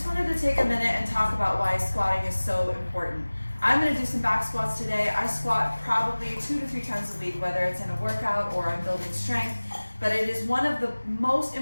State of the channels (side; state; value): both; inverted; correlation -1.00